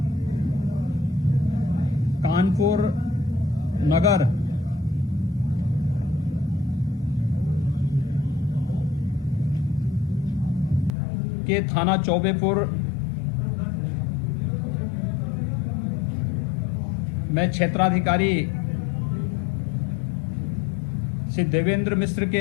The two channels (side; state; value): right; drops out; at 10.9 s